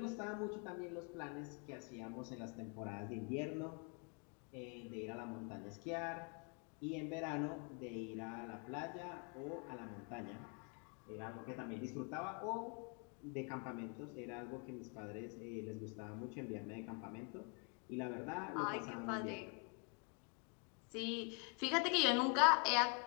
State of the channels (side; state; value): right; quieter; 37.4 dB